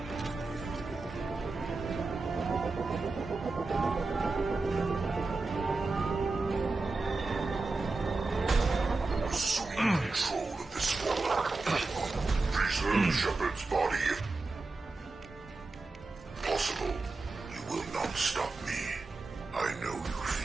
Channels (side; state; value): left; quieter; 3.6 dB